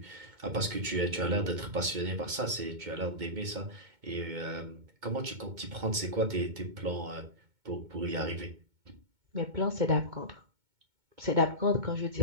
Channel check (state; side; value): late; left; 2.2 ms